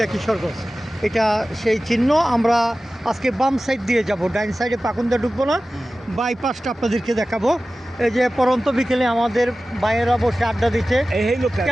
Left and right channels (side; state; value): both; normal; correlation 0.96